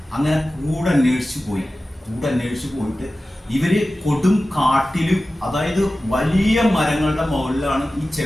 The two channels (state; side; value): normal; both; correlation 0.95